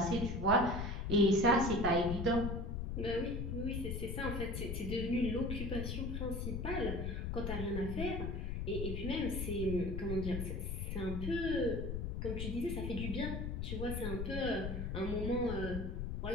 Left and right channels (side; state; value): left; noise; rumble, 3 dB below the sound